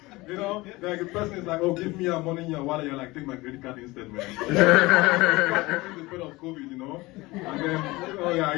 You know, like the person is like, oh, give me your money in your wallet. You're like, take my credit card instead, man. The spread of COVID, you know. And then, oh yeah,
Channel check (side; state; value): right; quieter; 21.2 dB